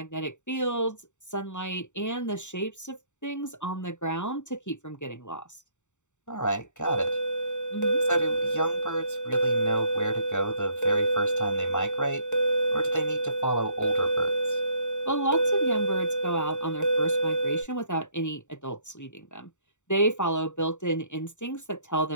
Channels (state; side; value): late; right; 0.84 ms